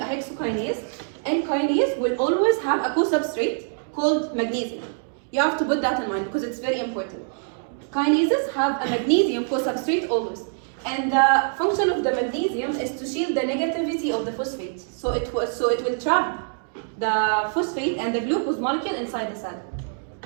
hexokinase, and kinase will always have a co-substrate called magnesium. You have to put that in mind because it's very important. Kinases have a magnesium co-substrate always, and the function of the magnesium is to shield the negativity of the phosphate. So it will trap the phosphate and the glucose molecule inside the cell.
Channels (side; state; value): left; silent; 61 dB below the other